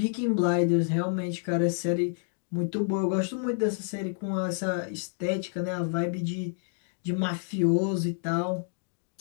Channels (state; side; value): silent; right; 59 dB below the other